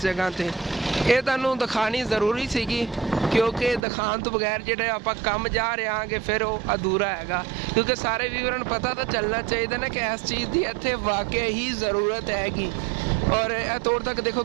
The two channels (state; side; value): drops out; left; at 3.9 s